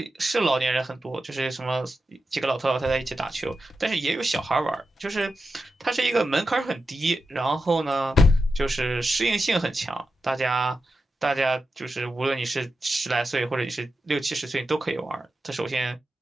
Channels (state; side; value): normal; both; correlation 0.90